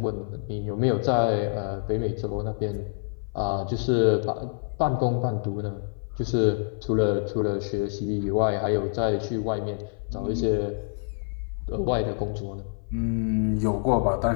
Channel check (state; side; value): silent; right; 55 dB below the other